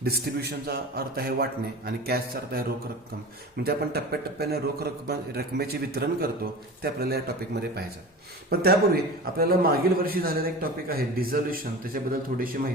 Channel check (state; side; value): normal; both; correlation 0.34